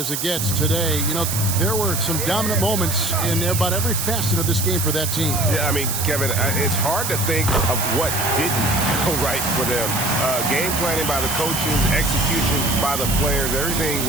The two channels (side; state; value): right; noise; hiss, 2 dB below the sound